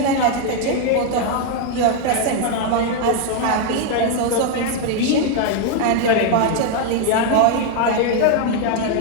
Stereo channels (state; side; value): different; both; correlation 0.00